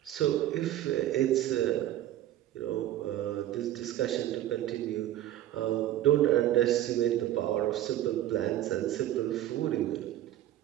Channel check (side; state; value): left; quieter; 13.1 dB